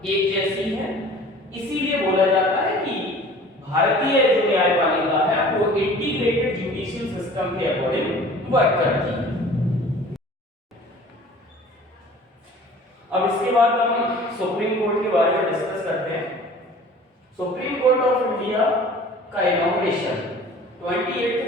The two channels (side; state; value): both; normal; correlation 0.46